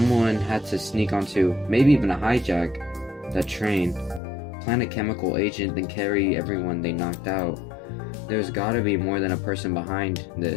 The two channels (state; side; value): drops out; right; at 4.2 s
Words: had to sneak onto, maybe even a hijack, that train, plant a chemical agent, then carry everyone they knocked out. There's gotta be more than a person behind